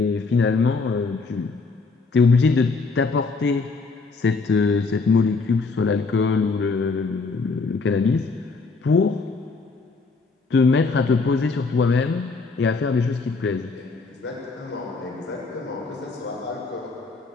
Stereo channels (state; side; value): quieter; right; 4.2 dB